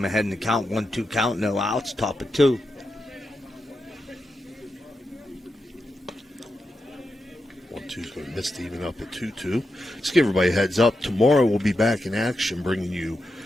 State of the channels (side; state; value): both; normal; correlation 0.87